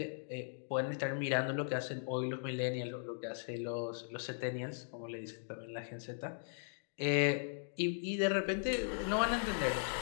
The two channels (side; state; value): right; silent; digital silence